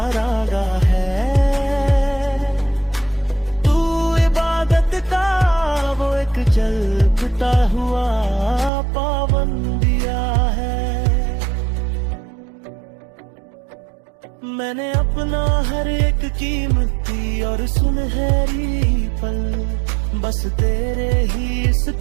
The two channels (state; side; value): drops out; left; at 8.7 s